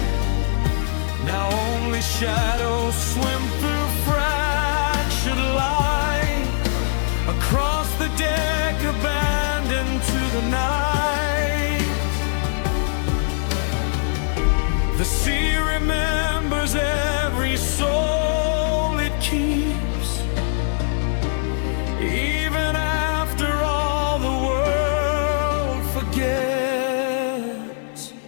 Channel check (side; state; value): right; silent; digital silence